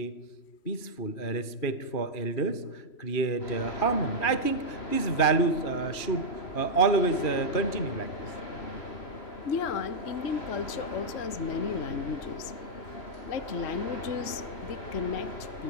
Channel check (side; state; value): right; late; 3.1 ms